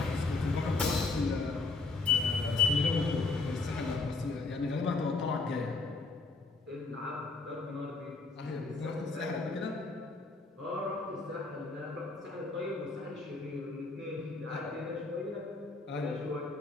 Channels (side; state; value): right; quieter; 3.7 dB